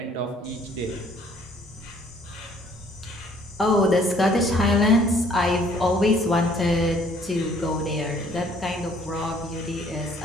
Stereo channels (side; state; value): both; normal; correlation 0.60